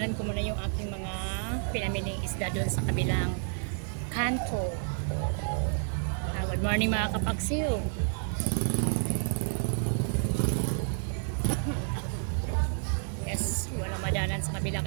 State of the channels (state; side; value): silent; left; 58 dB below the other